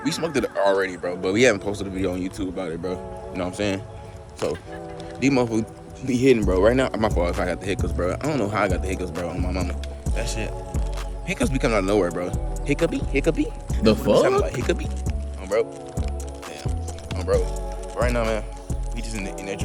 We smoked it already, bro, but we haven't posted a video on YouTube about it, bro. You know what I'm saying? So, these motherfuckers be hitting, bro. Right now, my fault if I got the hiccups, bro. I don't know how I got the hiccups, bro, on my mama. That shit. Hiccups be coming out of nowhere, bro. Hiccupy? The fuck? Like hiccupy? Bro. Damn. Bro. Right now, man, we just in there trying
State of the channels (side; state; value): both; identical; correlation 1.00